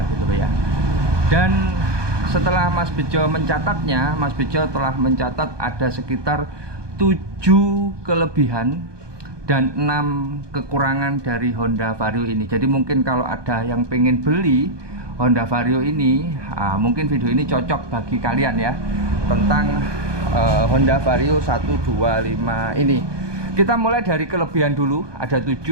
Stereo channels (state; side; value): late; left; 1.2 ms